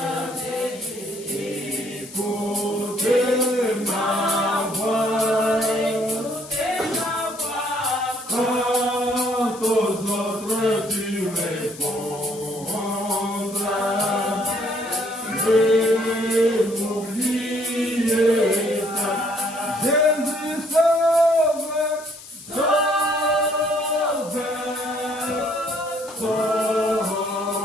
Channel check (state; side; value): noise; left; hiss, 18 dB below the sound